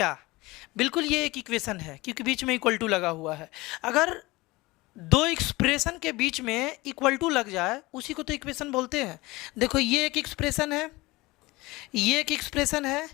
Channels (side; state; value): right; quieter; 21.5 dB